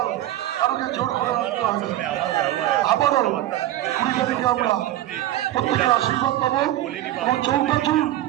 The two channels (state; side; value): quieter; left; 14.0 dB